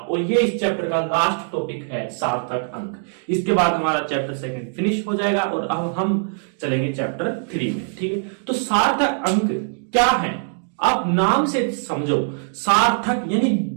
ये इस चैप्टर का लास्ट टॉपिक है सार्थक अंक। इसके बाद हमारा चैप्टर सेकंड फिनिश हो जाएगा और अब हम चलेंगे चैप्टर 3 में, ठीक है। तो सार्थक अंक क्या है, आप नाम से समझो। सार्थक यानी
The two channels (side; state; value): left; silent; 58 dB below the other